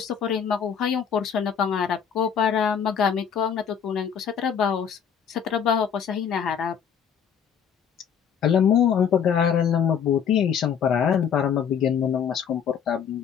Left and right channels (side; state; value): right; quieter; 7.7 dB